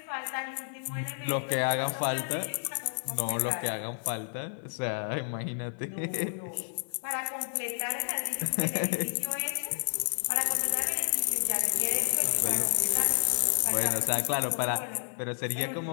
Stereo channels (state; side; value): silent; right; 57 dB below the other